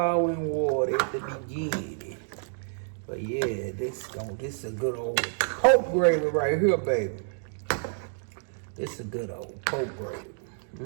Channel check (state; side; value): silent; left; digital silence